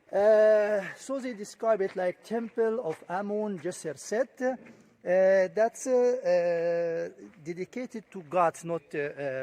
So they describe it like Temple of Amon Jisr Set. That's dedicated to gods, not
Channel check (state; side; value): identical; both; correlation 1.00